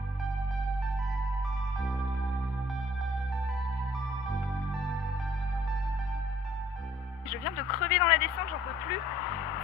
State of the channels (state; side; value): normal; both; correlation 0.58